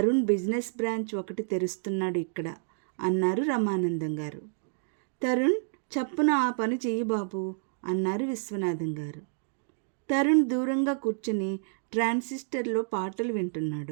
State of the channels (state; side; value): silent; left; digital silence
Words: బిజినెస్ బ్రాంచ్ ఒకటి తెరుస్తున్నాడు ఇక్కడ అన్నారు రమానందం గారు. తరుణ్, చప్పున ఆ పని చెయ్యి బాబు అన్నారు విశ్వనాథం గారు. తరుణ్ దూరంగా కూర్చుని ట్రాన్సిస్టర్లో పాటలు